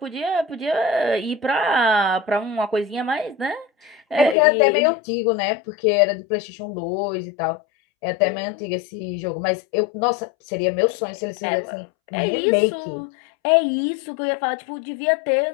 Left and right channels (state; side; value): drops out; right; at 4.4 s